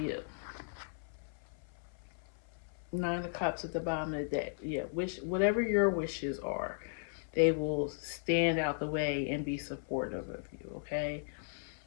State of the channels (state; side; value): silent; right; 54 dB below the other